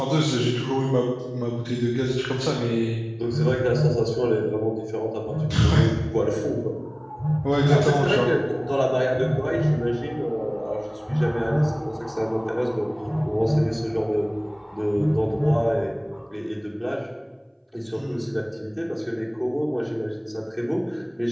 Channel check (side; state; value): both; identical; correlation 1.00